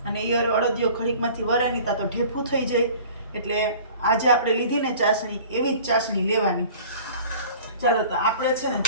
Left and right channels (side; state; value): both; inverted; correlation -0.46